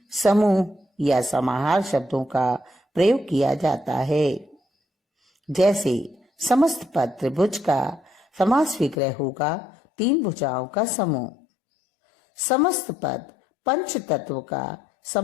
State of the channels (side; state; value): right; drops out; at 9.0 s